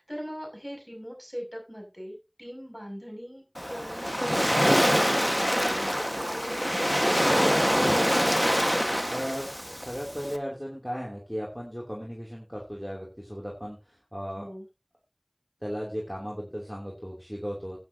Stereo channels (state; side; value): identical; both; correlation 1.00